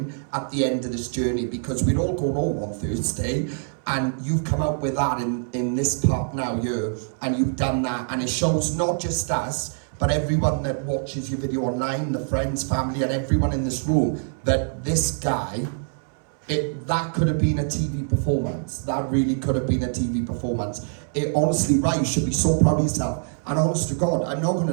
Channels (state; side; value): silent; left; 62 dB below the other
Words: at the end of this journey, because we're all going home on Thursday, and you've come out with that in this part now here, and you've done that, and it shows not just us, but everyone that watches your video online, the friends, family, and everyone in this room, that this guy, that could have been a TV performance. That really could have been a TV performance. Honestly, right, you should be so proud of yourself. And honest to God, I'm not going